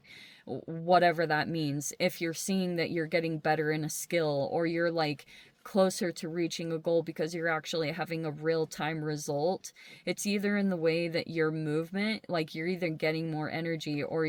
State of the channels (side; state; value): both; identical; correlation 1.00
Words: whatever that means. If you're seeing that you're getting better in a skill or you're like closer to reaching a goal because you're actually having a real-time result, it's either in the way that your movement, like you're either getting more energy or